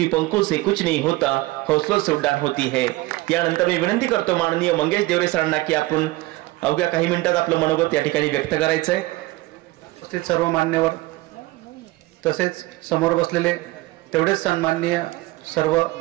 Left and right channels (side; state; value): left; quieter; 20.1 dB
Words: पंखों से कुछ नहीं होता, हौसलों से उड़ान होती है. यानंतर मी विनंती करतो माननीय मंगेश देवरे सरांना की आपण अवघ्या काही मिनिटात आपलं मनोगत या ठिकाणी व्यक्त करायचं आहे. उपस्थित सर्व मान्यवर तसेच समोर बसलेले तेवढेच सन्माननीय सर्व